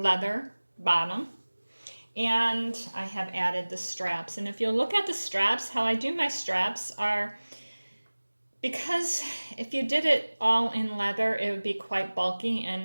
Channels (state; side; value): inverted; both; correlation -1.00